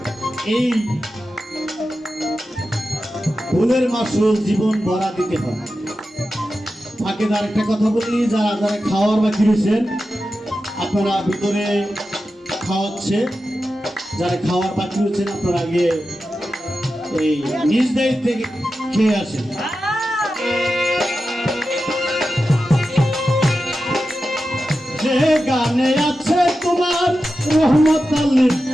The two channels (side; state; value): both; normal; correlation 0.92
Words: এই ভুলের মাসুল জীবন ভরা দিতে হয়। ফাঁকে আর একটা কথা বলি, যারা যারা খাওয়ার বাকি রয়েছেন আপনারা ভিতরে খাওয়াচ্ছে, যারা খাওয়ার বাকি রয়েছেন আপনারা আগে এই নিজ দায়িত্বে খেয়ে আসেন। যে গানে আছে তোমার রহমত